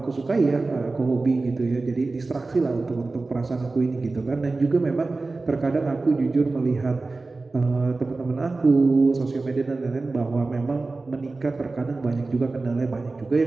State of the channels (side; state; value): left; quieter; 3.5 dB